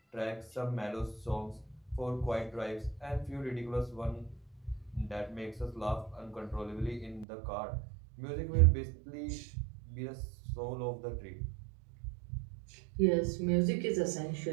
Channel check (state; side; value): drops out; left; at 7.2 s